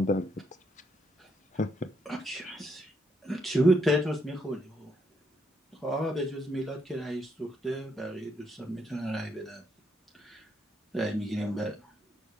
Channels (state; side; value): normal; both; correlation 0.76